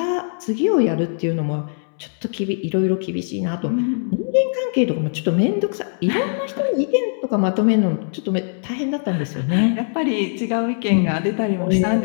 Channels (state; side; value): silent; right; 65 dB below the other